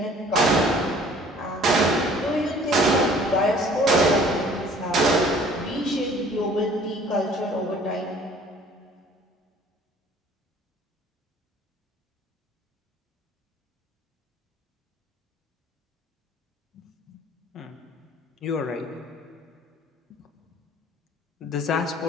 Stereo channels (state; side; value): normal; both; correlation 0.53